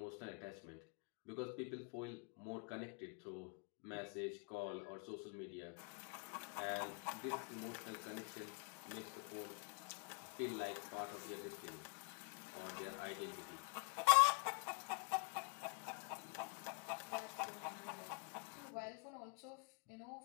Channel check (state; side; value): quieter; right; 35.5 dB